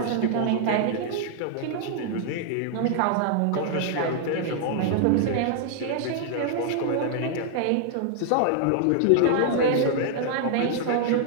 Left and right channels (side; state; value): both; different; correlation -0.01